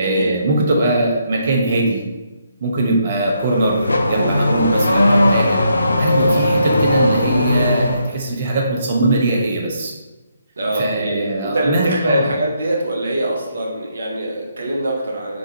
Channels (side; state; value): both; inverted; correlation -0.76